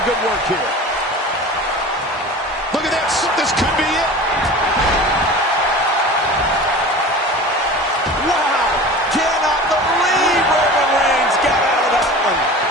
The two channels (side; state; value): both; normal; correlation 0.36